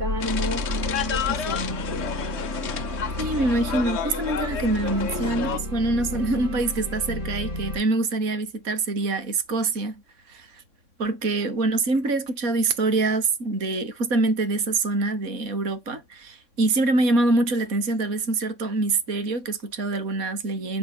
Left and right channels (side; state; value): left; late; 3.6 ms